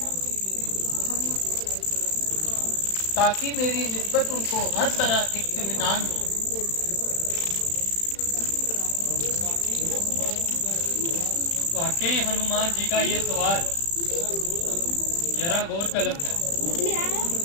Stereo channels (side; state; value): right; late; 35 ms